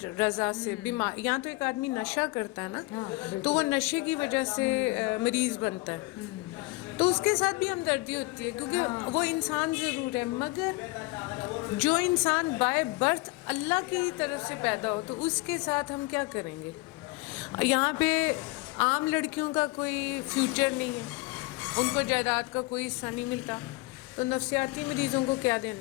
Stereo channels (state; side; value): quieter; right; 22.0 dB